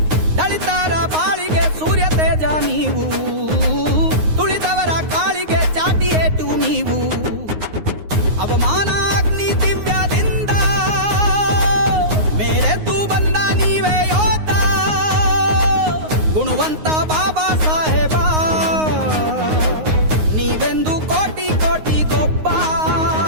ದಳಿತರ ಬಾಳಿಗೆ ಸೂರ್ಯ ತೇಜ ನೀವು, ತುಳಿದವರ ಕಾಳಿಗೆ ಚಾಟಿ ಏಟು ನೀವು, ಅವಮಾನ ಅಗ್ನಿ ದಿವ್ಯದಿಂದ ಮೇರೆದ್ದು ಬಂದ ನೀವೇ ಯೋಧ, ಗುಣವಂತ ಬಾಬಾ ಸಾಹೇಬ ನೀವೆಂದು ಕೋಟಿ ಕೋಟಿ ಗೊಬ್ಬ,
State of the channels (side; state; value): left; late; 9.5 ms